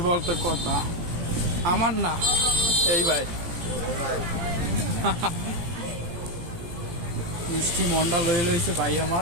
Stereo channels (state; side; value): late; left; 17 ms